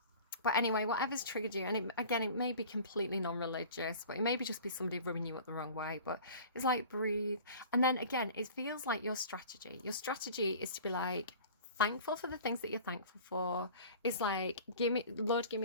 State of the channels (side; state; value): both; inverted; correlation -0.43